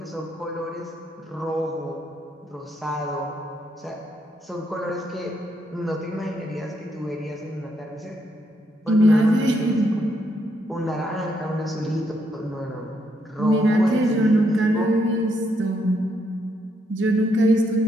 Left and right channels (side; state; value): both; normal; correlation 0.76